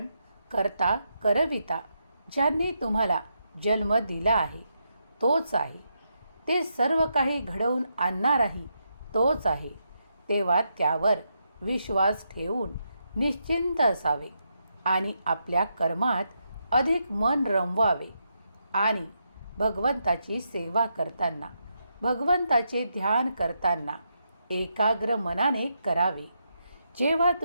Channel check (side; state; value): both; inverted; correlation -0.81